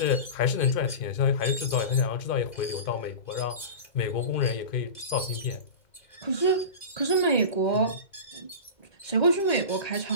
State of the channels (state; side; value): late; right; 2.0 ms